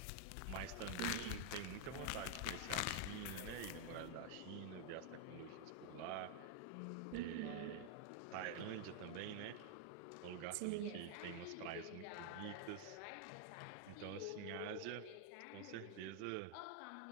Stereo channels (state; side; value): different; both; correlation 0.00